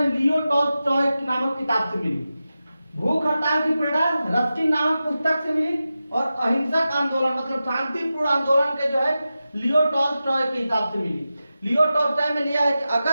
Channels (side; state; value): both; inverted; correlation -0.93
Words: लियो टॉल्स्टॉय नामक किताब से मिली। भूख हड़ताल की प्रेरणा रस्किन नामक पुस्तक से मिली और अहिंसक आंदोलन मतलब शांतिपूर्ण आंदोलन के जो है लियो टॉल्स्टॉय के हिसाब से मिली। लियो टॉल्स्टॉय में लिया है कि